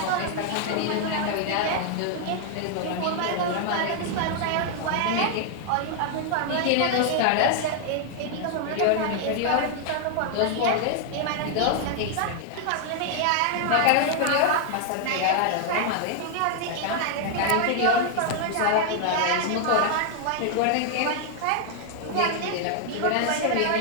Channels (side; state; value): both; different; correlation 0.00